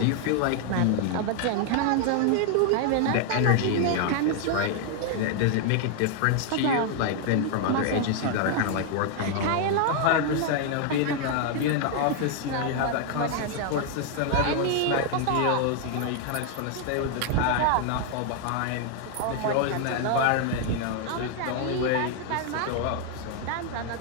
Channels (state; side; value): different; both; correlation 0.00